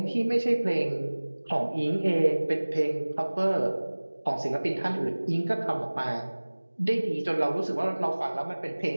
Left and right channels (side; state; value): both; inverted; correlation -1.00